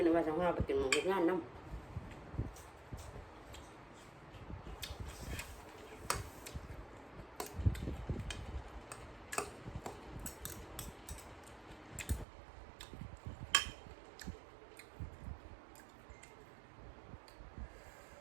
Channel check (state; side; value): drops out; left; at 12.2 s